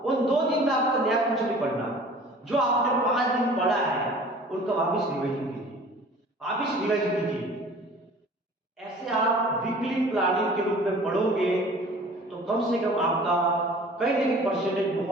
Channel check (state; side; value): normal; both; correlation 0.46